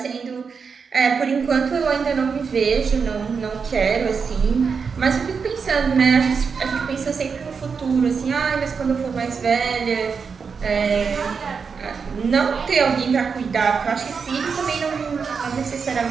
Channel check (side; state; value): left; quieter; 5.7 dB